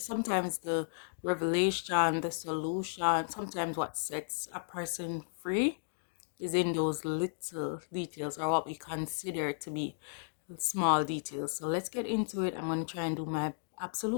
the revelation, the solution, sometimes what sets a person free is in those little details or what we consider to be small details. So let's get into it. I'm going to try and do my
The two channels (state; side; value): silent; right; digital silence